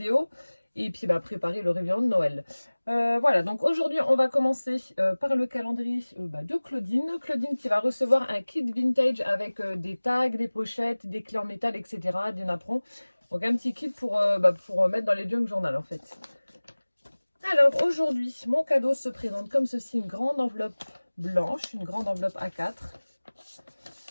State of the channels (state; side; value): inverted; both; correlation -1.00